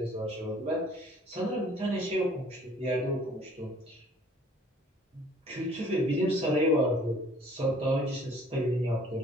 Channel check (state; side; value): normal; both; correlation 0.55